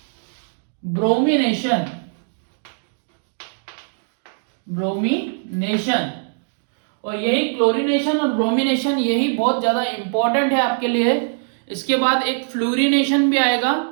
ब्रोमिनेशन। और यही क्लोरीनेशन और ब्रोमिनेशन यही बहुत ज्यादा इंपॉर्टेंट है आपके लिए इसके बाद एक फ्लोरिनेशन भी आएगा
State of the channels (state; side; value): silent; left; digital silence